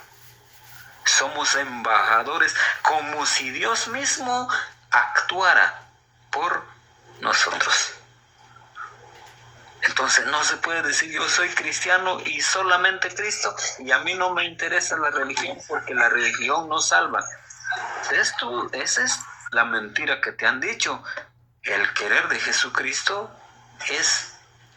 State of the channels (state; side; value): identical; both; correlation 1.00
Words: Somos embajadores, como si Dios mismo actuara por nosotros. Entonces no se puede decir yo soy cristiano y solamente Cristo y a mí no me interesa la religión porque la religión no salva. Esa es la mentira que te han dicho. El querer de Jesucristo es